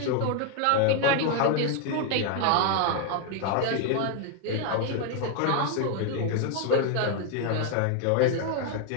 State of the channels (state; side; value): different; both; correlation 0.01